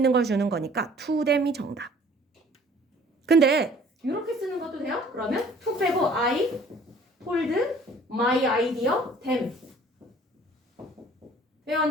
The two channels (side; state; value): both; normal; correlation 0.53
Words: 걸 주는 거니까 to them이 정답. 근데 이렇게 쓰는 것도 돼요? 그러면 to 빼고 I told my idea them. 돼요,